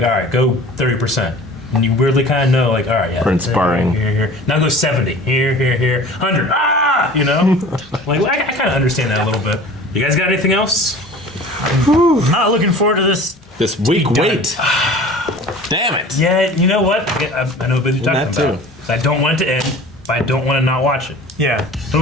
all right, go 30%. And you weirdly kind of know, like, all right, yeah. Or in sparring. Here. Now go 70. Here. 100. Like, I kind of understand that a little bit. You guys got anything else? I'm not looking forward to this. This week, wait. Damn it. Yeah, you know what? I know what you're talking about. Too. I don't want it to end, but I don't want to not watch it. Yeah. What do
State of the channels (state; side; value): normal; both; correlation 0.43